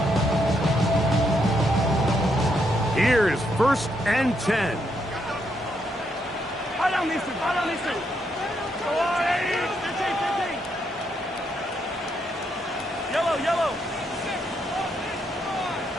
Here's first and 10. High down these two. High down these two. Go on, 15. Yellow, yellow.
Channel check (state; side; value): normal; both; correlation 0.77